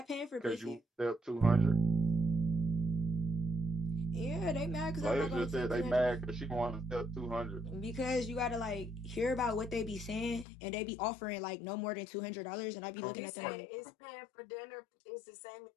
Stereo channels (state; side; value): drops out; right; at 10.5 s